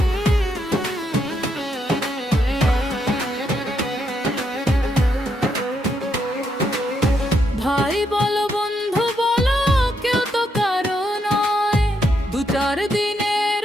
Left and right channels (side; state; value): both; normal; correlation 0.78